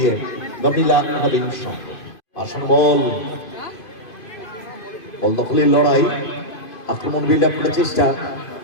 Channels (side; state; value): right; late; 2.5 ms